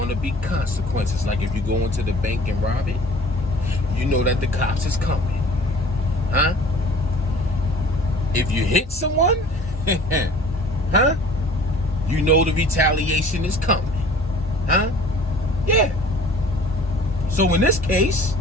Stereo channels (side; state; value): both; normal; correlation 0.48